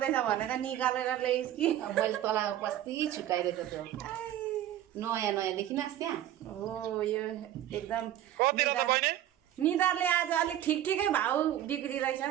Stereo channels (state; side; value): quieter; left; 12.3 dB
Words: भनेर निकालेर ल्याइस् कि मैले तँलाई बस्ती छुकाइदिएको थियो नयाँ नयाँ देखिनस् त्यहाँ हो यो एकदम कति रहेछ बहिनी निधारले आज अलिक ठिकै भाउ बिग्रिरहेछ